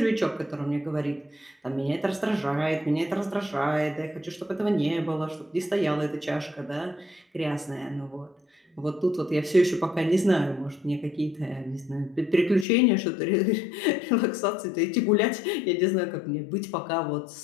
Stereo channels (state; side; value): drops out; right; at 12.7 s